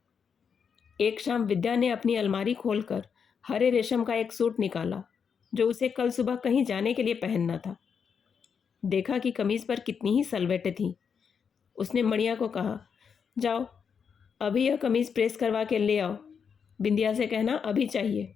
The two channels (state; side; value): quieter; right; 6.6 dB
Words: एक शाम विद्या ने अपनी अलमारी खोलकर हरे रेशम का एक सूट निकाला जो उसे कल सुबह कहीं जाने के लिए पहनना था। देखा कि कमीज़ पर कितनी ही सलवटें थीं। उसने मणियाँ को कहा, जाओ अभी यह कमीज़ प्रेस करवा के ले आओ, बिंदिया से कहना अभी चाहिए।